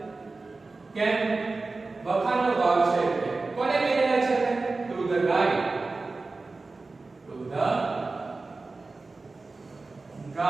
કેમ વખાણનો ભાવ છે કોને કહી રહ્યા છે to the guide. to the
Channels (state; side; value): quieter; left; 3.6 dB